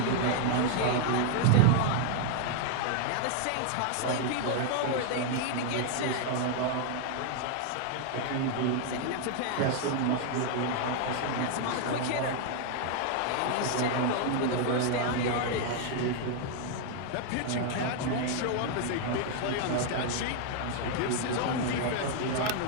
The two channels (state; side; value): different; both; correlation 0.00